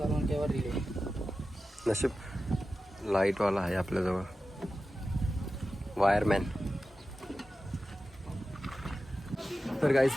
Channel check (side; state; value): both; normal; correlation 0.93